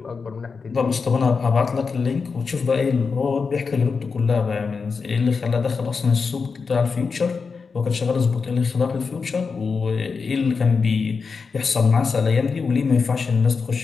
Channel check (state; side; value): quieter; right; 5.1 dB